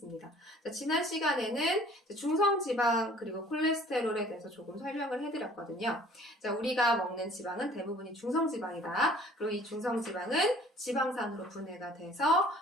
자, 지난 시간에는 중성지방 그리고 콜레스테롤에 대해서 조금 설명을 해드렸거든요. 자, 우리가 먹는 지방은 대부분이 중성지방이다. 그리고 이 중성지방은 지방산으로 분해가 돼서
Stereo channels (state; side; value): normal; both; correlation 0.53